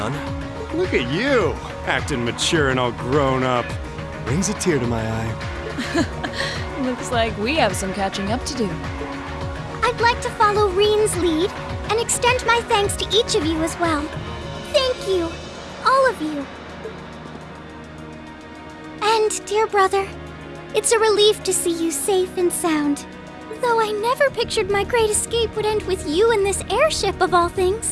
Look at you, acting mature and all grown up. Brings a tear to my eye. Looks like we have some catching up to do. I'd like to follow Reen's lead and extend my thanks to each of you as well. Thank you, all of you. And, dear brother, it's a relief to see you safe and sound. Though I never pictured my great escape would end with you in this airship of all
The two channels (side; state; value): both; identical; correlation 1.00